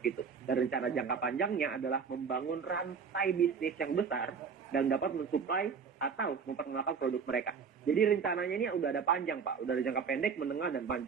VTube. Dan rencana jangka panjangnya adalah membangun rantai bisnis yang besar dan dapat mensuplai atau memperkenalkan produk mereka. Jadi rencananya ini udah ada panjang, Pak. Udah ada jangka pendek, menengah, dan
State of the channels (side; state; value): left; quieter; 6.1 dB